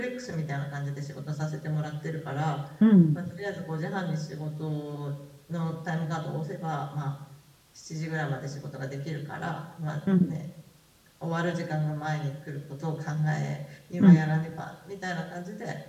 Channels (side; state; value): both; identical; correlation 1.00